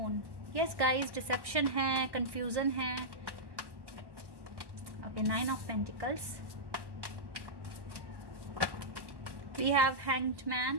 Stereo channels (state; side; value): late; left; 1.1 ms